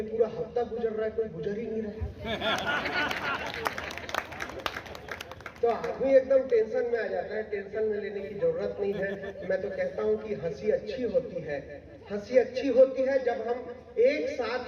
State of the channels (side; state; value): both; identical; correlation 1.00